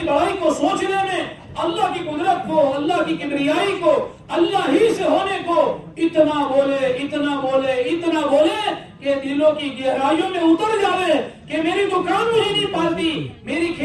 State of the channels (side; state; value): both; identical; correlation 1.00